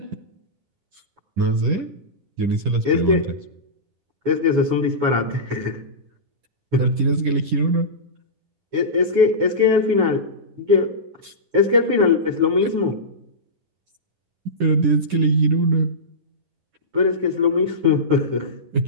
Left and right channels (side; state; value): left; late; 10 ms